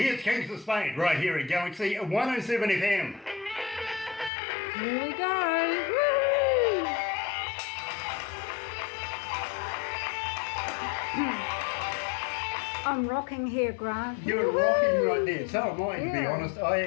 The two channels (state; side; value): drops out; right; at 4.3 s